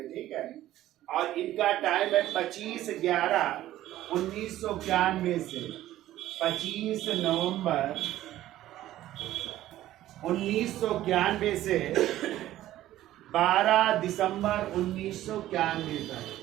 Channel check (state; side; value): quieter; left; 14.1 dB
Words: ठीक है? और इनका टाइम है 25/11/1991 से 25 नवंबर 1991 से 12 दिसंबर 1991 तक।